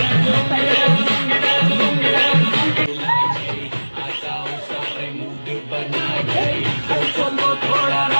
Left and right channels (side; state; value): both; inverted; correlation -1.00